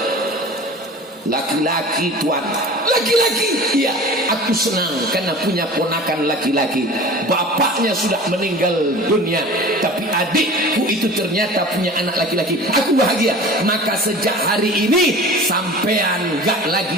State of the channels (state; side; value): normal; both; correlation 0.39